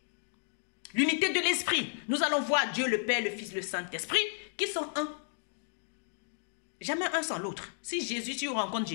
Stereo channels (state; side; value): silent; right; 56 dB below the other